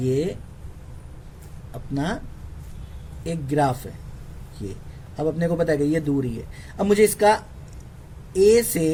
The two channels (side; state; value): both; identical; correlation 1.00